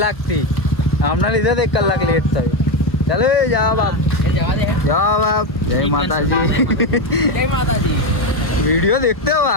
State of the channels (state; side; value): late; right; 1.1 ms